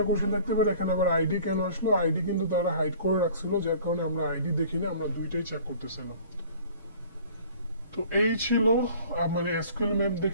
কোশ্চেন থাকতে পারে এখানে আবার আইডি কেন আসলো? আইডি কিন্তু তারা হাইড করে রাখছিল, যার কারণে আমরা আইডি দেখিনি, আমরা দুইটাই চেক করতেছিলাম। তো এই ছিল মানে এসকিউএল ম্যাপ দিয়ে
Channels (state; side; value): inverted; both; correlation -0.46